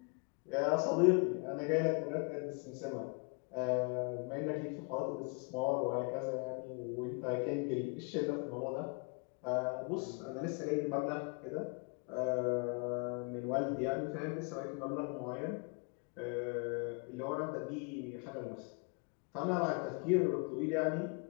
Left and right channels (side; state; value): right; quieter; 35.7 dB